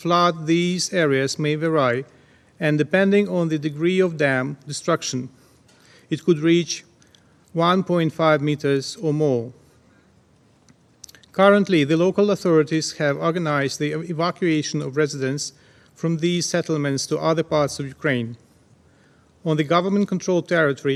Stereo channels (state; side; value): identical; both; correlation 1.00